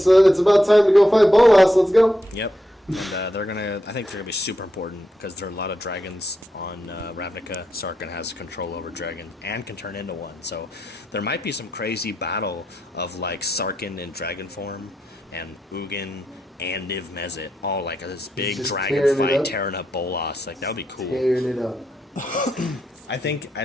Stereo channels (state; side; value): normal; both; correlation 0.83